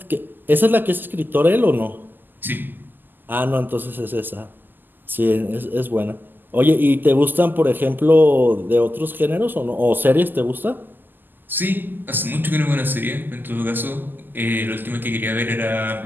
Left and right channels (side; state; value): left; late; 0.090 ms